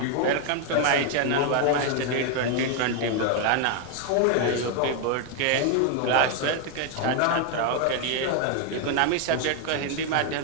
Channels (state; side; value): different; both; correlation 0.01